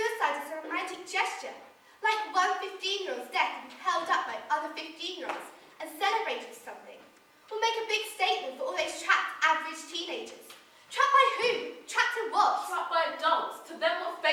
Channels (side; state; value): both; identical; correlation 1.00